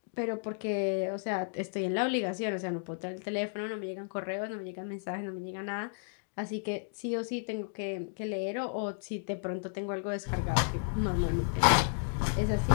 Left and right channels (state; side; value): silent; right; digital silence